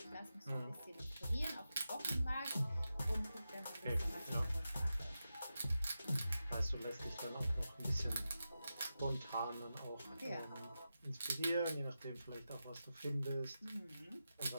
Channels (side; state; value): both; inverted; correlation -0.91